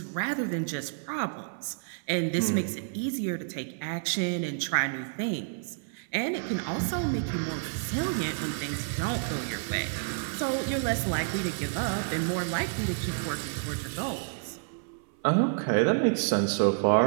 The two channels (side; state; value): left; silent; 58 dB below the other